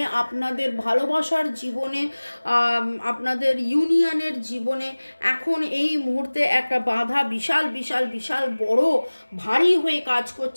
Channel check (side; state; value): both; inverted; correlation -1.00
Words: আপনাদের ভালোবাসার জীবনে, আপনাদের ইউনিয়নের জীবনে এখন এই মুহূর্তে একটা বাধা বিশাল বিশাল বিশাল বড় ভারী হয়ে কাজ